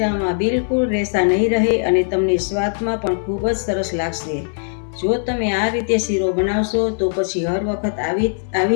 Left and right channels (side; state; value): right; silent; 66 dB below the other